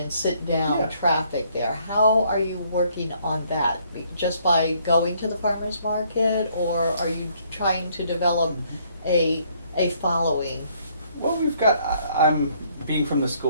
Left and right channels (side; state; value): both; inverted; correlation -0.66